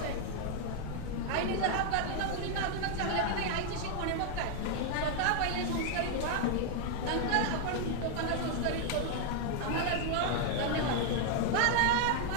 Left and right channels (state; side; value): different; both; correlation 0.00